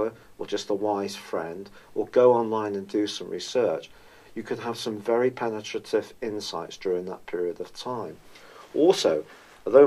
or just a wise friend, or go online and do some research, you could have some very penetrative insights during that period of time. Also,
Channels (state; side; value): identical; both; correlation 1.00